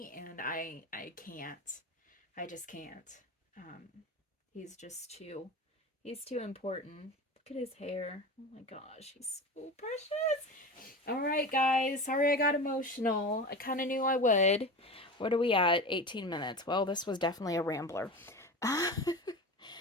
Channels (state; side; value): normal; both; correlation 0.29